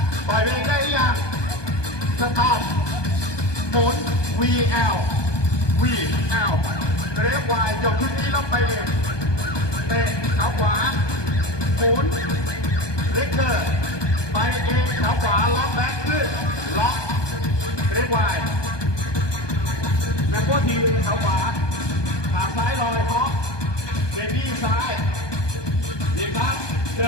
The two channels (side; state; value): right; late; 1.2 ms